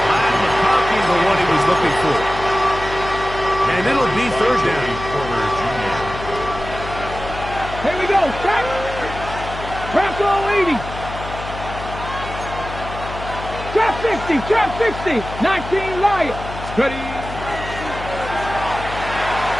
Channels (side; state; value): left; noise; hum, 10 dB below the sound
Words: And the copy of what he was looking for. And it'll be 3rd down. Here we go. go. Check. Bronco 80. Trap 60. Trap 60. 19 Lion. Steady.